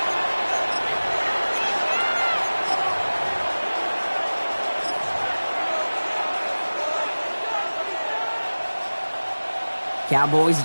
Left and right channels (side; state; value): both; inverted; correlation -1.00